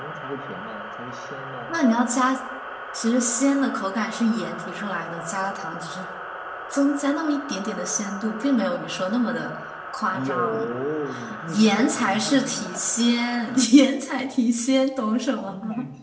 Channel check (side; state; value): both; identical; correlation 1.00